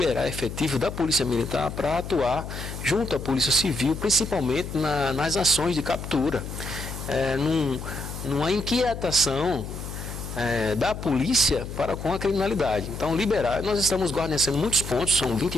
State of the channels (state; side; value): noise; left; hum, 8 dB below the sound